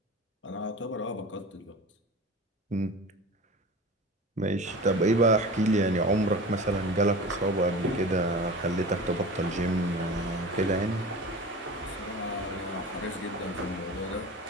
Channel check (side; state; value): both; normal; correlation 0.34